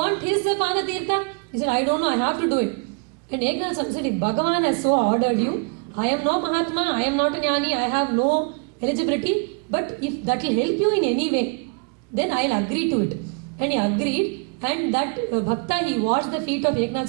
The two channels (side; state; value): left; quieter; 34.9 dB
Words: his Pada Tirtha? He said, I don't know, I have to do it. And Eknath Swami said, if Bhagavan has so ordered you, I am no Mahatma, I am not a Jnani, I have no eligibility, but if that will help you in any way, then I will agree to it. And he agreed, and that Bhakta, he washed the feet of Eknath